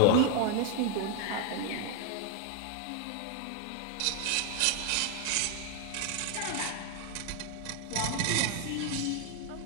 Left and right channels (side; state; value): both; different; correlation 0.01